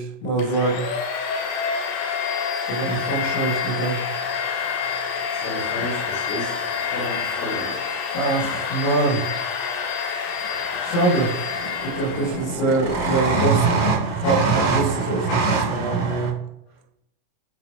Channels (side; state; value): right; late; 33 ms